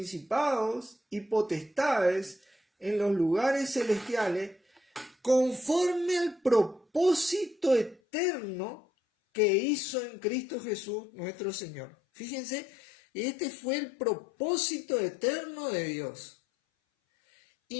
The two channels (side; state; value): right; drops out; at 8.0 s